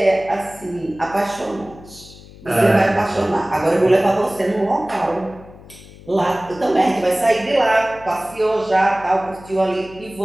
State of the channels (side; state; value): left; noise; hum, 20 dB below the sound